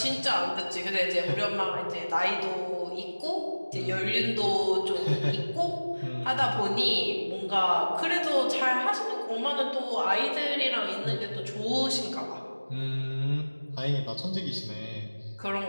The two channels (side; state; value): both; inverted; correlation -1.00